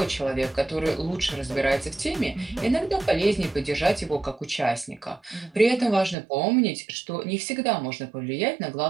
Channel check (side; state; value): left; drops out; at 6.2 s